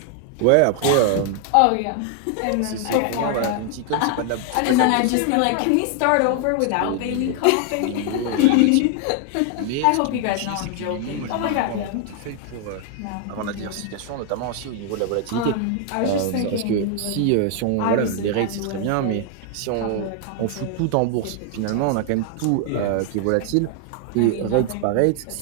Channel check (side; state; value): both; different; correlation 0.00